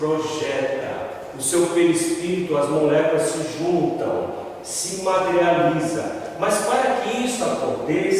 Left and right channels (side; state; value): both; identical; correlation 1.00